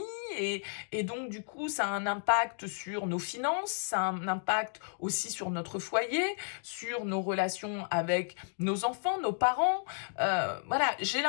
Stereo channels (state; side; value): silent; right; digital silence